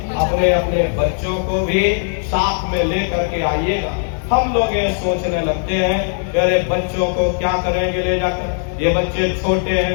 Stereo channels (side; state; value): right; silent; 67 dB below the other